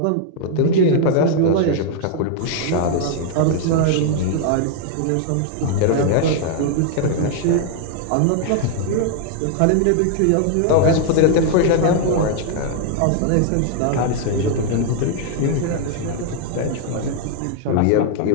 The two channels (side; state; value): both; different; correlation 0.00